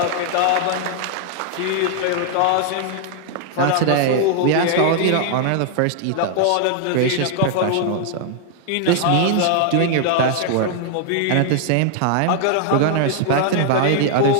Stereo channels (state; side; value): different; both; correlation 0.00